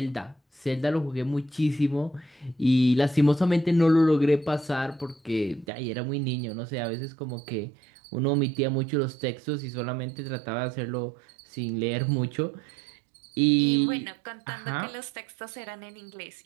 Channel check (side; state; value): left; drops out; at 5.7 s